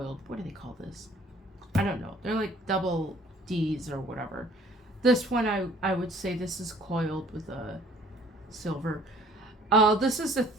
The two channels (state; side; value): normal; both; correlation 0.55